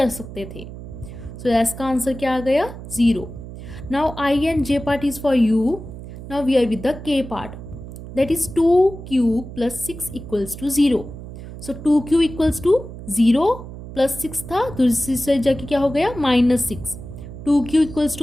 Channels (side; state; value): right; noise; hum, 12 dB below the sound